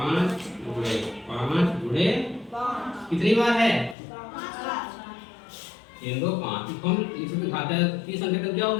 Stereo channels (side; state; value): right; drops out; at 4.0 s